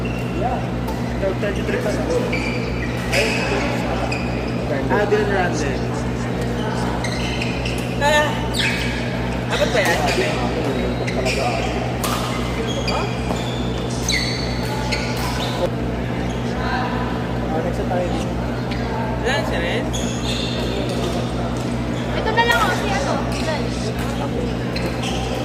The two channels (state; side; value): identical; both; correlation 1.00